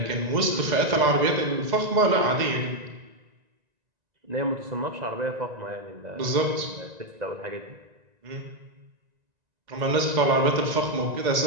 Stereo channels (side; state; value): left; late; 1.9 ms